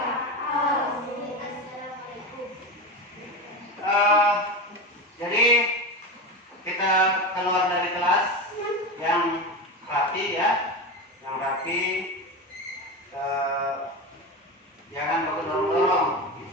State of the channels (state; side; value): normal; both; correlation 0.21